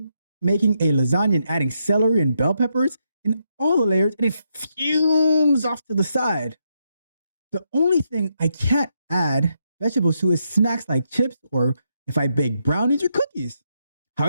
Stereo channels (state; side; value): inverted; both; correlation -0.80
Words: making a lasagna and adding celery and bell peppers in all the layers, and it fumes off to the side. The only thing I can't add vegetables to is snacks like chips or if I bake brownies or cookies.